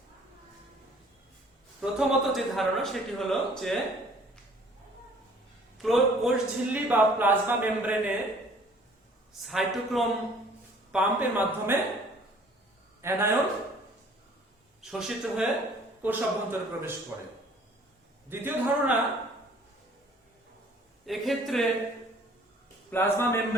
প্রথমত যে ধারণা সেটি হলো যে কোষ ঝিল্লি বা প্লাজমা মেমব্রেনে সাইটোক্রোম পাম্পের মাধ্যমে অ্যানায়ন শোষিত হয়ে কোষ অভ্যন্তরে প্রবেশ করে। দ্বিতীয় ধারণা, এক্ষেত্রে প্লাজমা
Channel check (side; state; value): both; normal; correlation 0.55